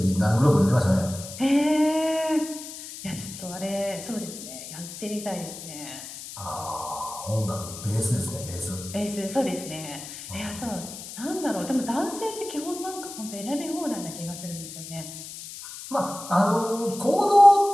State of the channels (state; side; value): noise; left; hiss, 12 dB below the sound